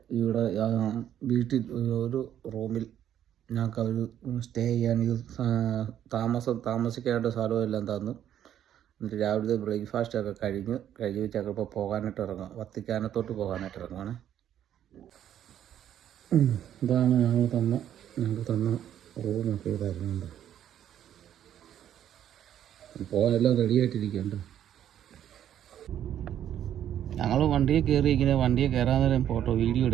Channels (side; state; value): left; quieter; 10.5 dB